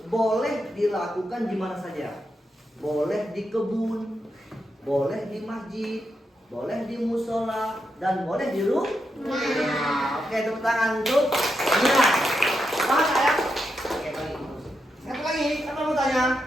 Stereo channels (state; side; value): normal; both; correlation 0.84